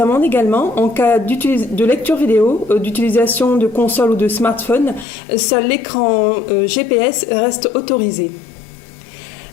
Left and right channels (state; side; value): drops out; right; at 5.1 s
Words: également en cas de lecture vidéo, d'utilisation de console ou de smartphone. Seul l'écran GPS reste autorisé.